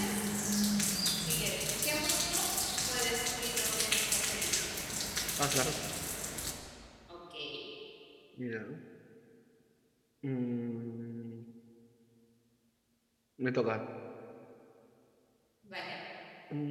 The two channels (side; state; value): both; identical; correlation 1.00